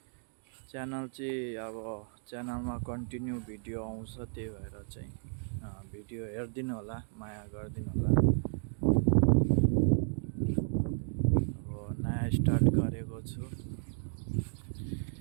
च्यानल चाहिँ अब च्यानलमा कन्टिन्यू भिडियो आउँछ, त्यही भएर चाहिँ भिडियो हेरिदिनु होला, माया गरिदिनु होला। अब नयाँ स्टार्ट गरेको छु,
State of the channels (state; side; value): silent; left; digital silence